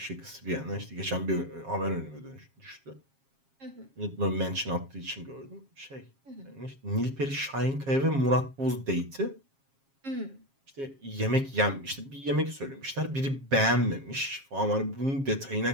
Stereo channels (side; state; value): left; late; 7.4 ms